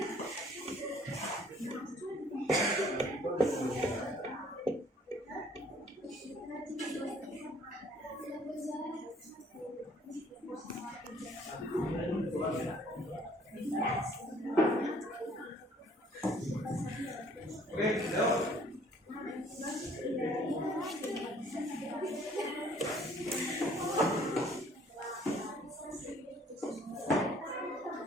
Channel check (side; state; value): both; normal; correlation 0.58